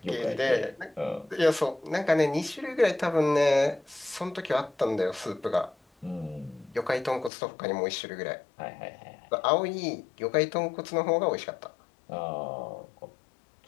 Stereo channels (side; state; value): right; drops out; at 7.3 s